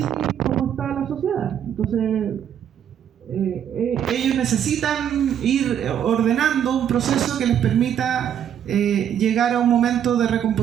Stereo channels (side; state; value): left; quieter; 9.4 dB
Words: como está la sociedad. Entonces ellos necesitan ir ordenando un proceso que les permita llegar a un momento de